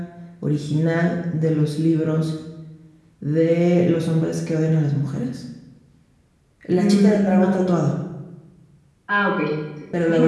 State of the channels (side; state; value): both; identical; correlation 1.00